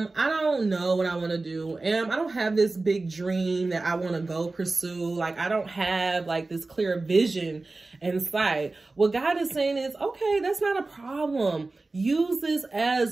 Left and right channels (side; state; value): left; quieter; 3.4 dB